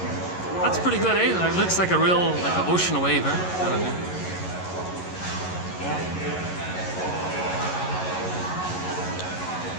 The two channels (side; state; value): right; late; 11 ms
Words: That's pretty good, eh? It looks like a real, like an ocean wave, eh? Kind of thing. Yeah.